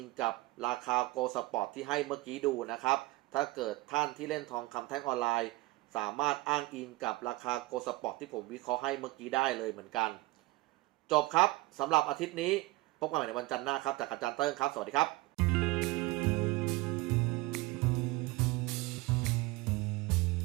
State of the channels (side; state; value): left; quieter; 20.4 dB